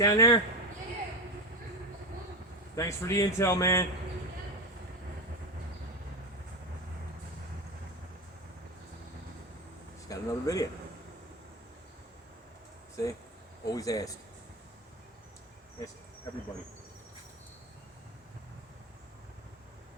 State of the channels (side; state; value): both; normal; correlation 0.18